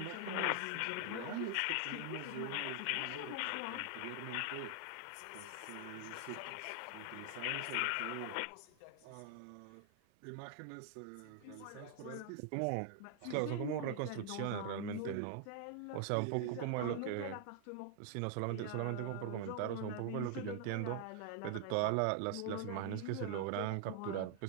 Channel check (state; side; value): different; both; correlation 0.00